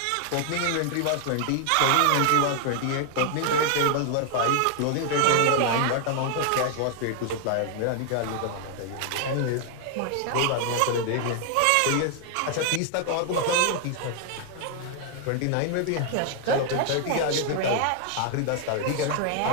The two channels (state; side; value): different; both; correlation 0.00